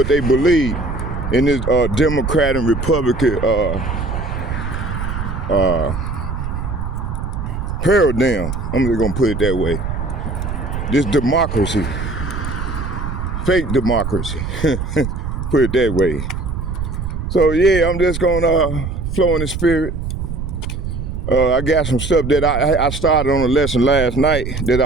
they believe in this Democrat and Republican paradigm. I'm just gonna put it that way. This democracy, fake democracy, put it that way. So yeah, I'm just gonna flow in the spirit. I got some stuff that I started on a lesson last night that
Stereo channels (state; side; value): noise; right; rumble, 4 dB below the sound